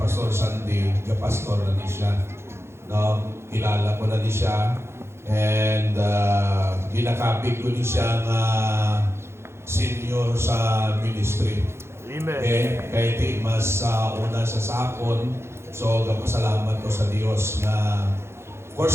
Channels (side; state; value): left; late; 0.12 ms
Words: Sandy, pastor na ni siya. No, kilala ko na ni siya. And ginakapit ko ni siya nga senior sa ministry. Amen. Okay, kaya iti mas una sa sakon. So, gapasalamat ko sa Dios nga of